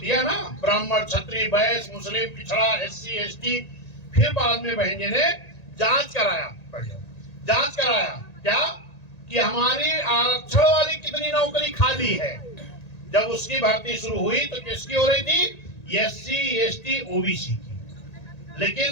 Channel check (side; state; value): right; late; 1.8 ms